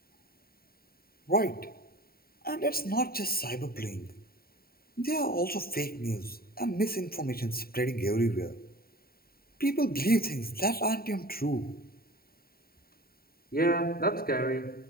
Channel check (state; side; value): late; right; 0.43 ms